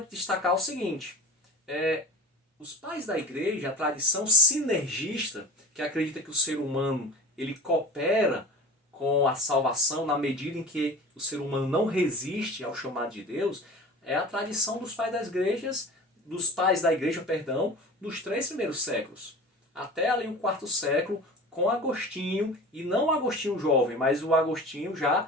destacar o seguinte, os pais da igreja, a tradição sinergista, que acredita que o ser humano ele coopera com a salvação na medida em que o ser humano não resiste ao chamado de Deus, é a tradição dos pais da igreja, dos 3 primeiros séculos. Até ali o 4º século, com Agostinho, e não o Agostinho jovem, mas o Agostinho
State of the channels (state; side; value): normal; both; correlation 0.36